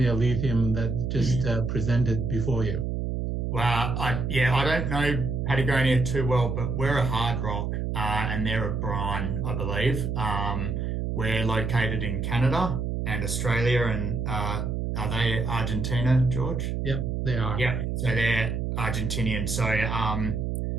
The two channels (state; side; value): noise; right; hum, 1 dB below the sound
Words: lithium that just presented before you? Well, I don't know Patagonia too well, but we're a hard rock and they're a brine, I believe. We're located in Canada and Australia, and are they Argentina, George? Yep, they are. Yeah, so they're Argentinian. So